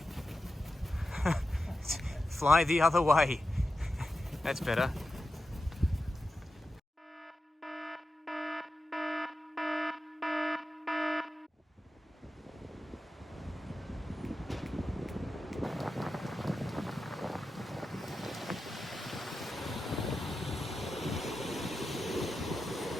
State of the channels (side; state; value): both; normal; correlation 0.91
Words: Fly the other way. That's better.